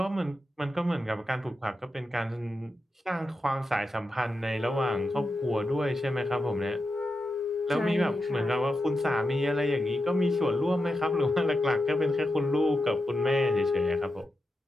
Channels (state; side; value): normal; both; correlation 0.88